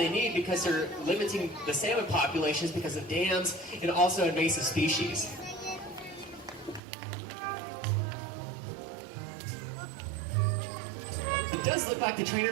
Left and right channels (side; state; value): left; drops out; at 6.8 s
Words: need because they're limiting the salmon populations because of dams and also invasive species. It does look like the